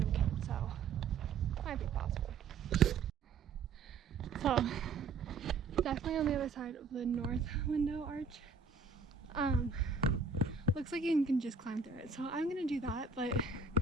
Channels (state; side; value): quieter; left; 4.7 dB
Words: kid, so might be possible. So definitely on the other side of the north window arch. Looks like you can just climb through it, so I'm gonna do that. But